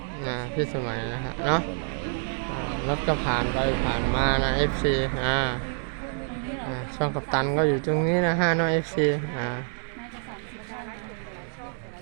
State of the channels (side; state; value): left; silent; 57 dB below the other